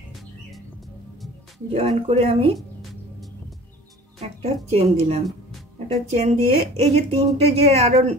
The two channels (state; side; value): normal; both; correlation 0.43